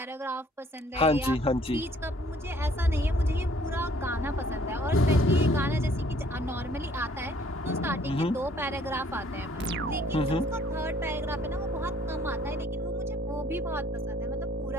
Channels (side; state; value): both; normal; correlation 0.60